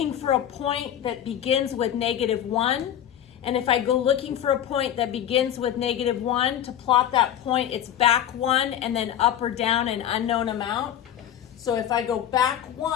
for a point that begins with -1. And if I go looking for a point that begins with -1, to plot that point, it's back 1 and then up or down an unknown amount. So if I go back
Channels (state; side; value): quieter; right; 10.5 dB